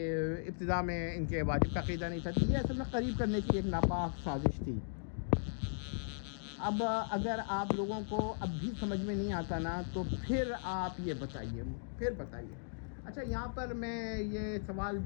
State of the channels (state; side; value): silent; right; digital silence